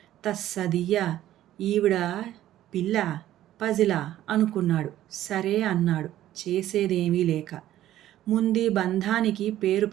తస్సదియ్యా, ఈవిడ పిల్ల పజిలా అనుకున్నాడు. సరే అన్నాడు చేసేదేమీ లేక. ముందీ బంధానికి పేరు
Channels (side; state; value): left; quieter; 13.2 dB